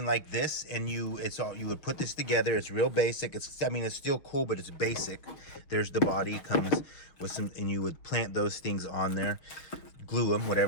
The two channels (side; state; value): right; late; 6.1 ms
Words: like this, and you would put this together. It's real basic. It's still cool, but it's basic. There's the body. It comes with some, and you would plant those things on there, glue them,